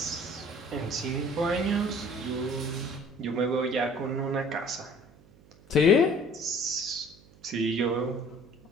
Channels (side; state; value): right; noise; hum, 26 dB below the sound